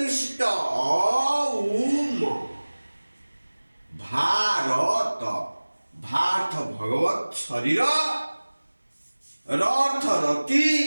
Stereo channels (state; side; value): inverted; both; correlation -1.00